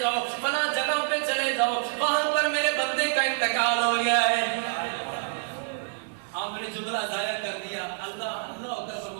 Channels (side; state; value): left; silent; digital silence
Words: جاؤ، فلاں جگہ پہ چلے جاؤ، وہاں پر میرے بندے کا انتقال ہو گیا ہے۔ آپ نے جملہ ضائع کر دیا، اللہ اللہ ہو کر